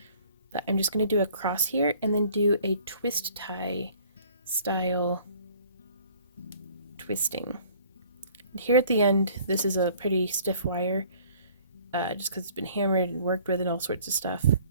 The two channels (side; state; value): both; inverted; correlation -0.55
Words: but I'm just going to do a cross here and then do a twist tie style twisting. And here at the end, this is a pretty stiff wire, just because it's been hammered and worked with and all sorts of stuff.